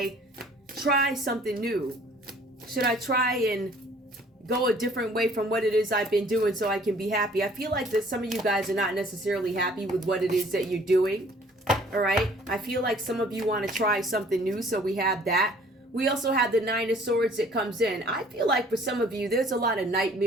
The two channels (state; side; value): normal; both; correlation 0.55